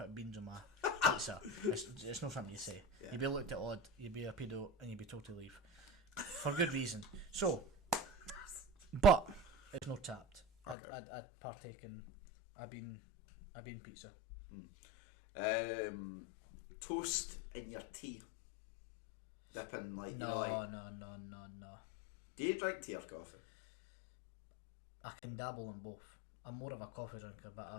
beans on my pizza? It's not something you say. Yeah. You'd be looked at odd, you'd be a pedo, and you'd be told to leave. For good reason. So, but it's not tapped. I'd partake in a bean pizza. Toast in your tea. Dipping like No. Do you drink tea or coffee? I can dabble in both. I'm more of a coffee drinker,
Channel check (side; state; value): right; drops out; at 10.8 s